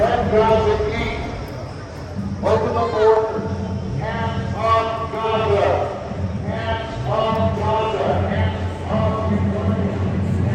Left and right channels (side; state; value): both; identical; correlation 1.00